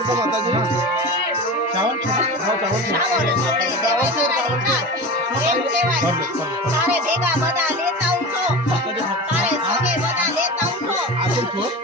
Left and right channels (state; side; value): normal; both; correlation 0.30